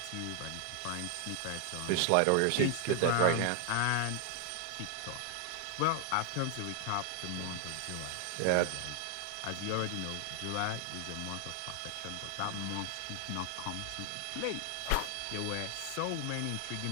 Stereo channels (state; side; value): different; both; correlation 0.00